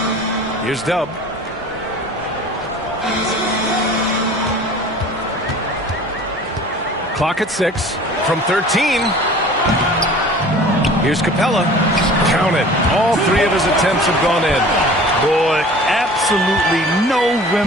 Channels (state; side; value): normal; both; correlation 0.44